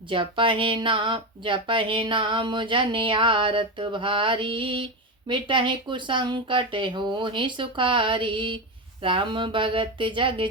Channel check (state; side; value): normal; both; correlation 0.15